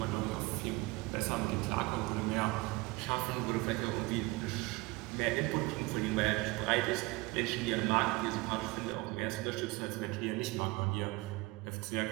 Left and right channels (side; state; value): left; quieter; 22.9 dB